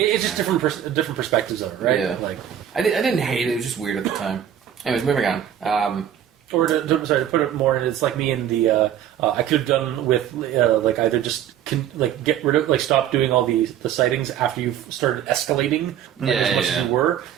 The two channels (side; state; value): left; quieter; 10.2 dB